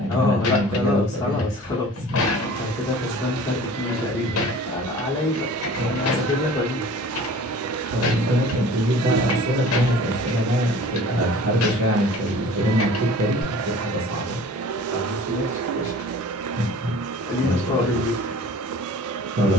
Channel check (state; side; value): normal; both; correlation 0.45